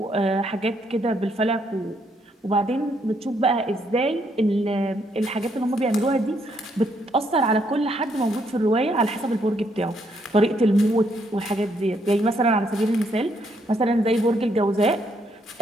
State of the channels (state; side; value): normal; both; correlation 0.73